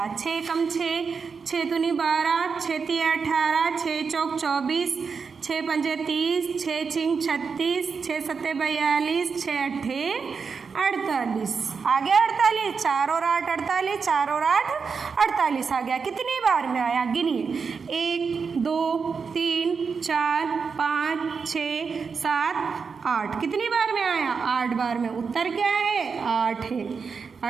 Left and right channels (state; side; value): quieter; left; 5.5 dB